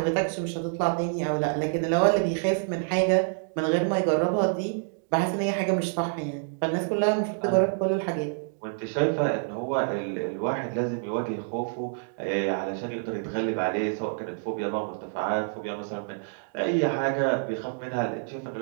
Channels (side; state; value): left; silent; digital silence